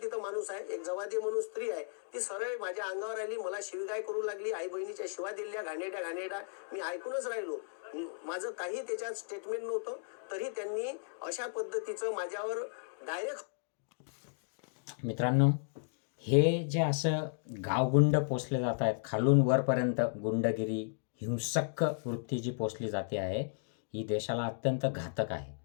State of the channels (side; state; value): right; silent; digital silence